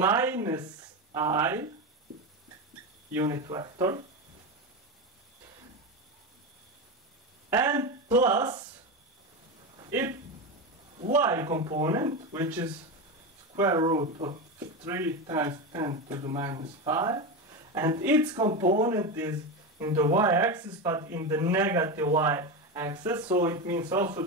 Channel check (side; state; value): both; normal; correlation 0.17